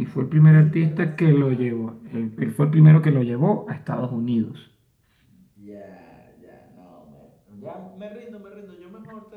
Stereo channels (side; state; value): both; identical; correlation 1.00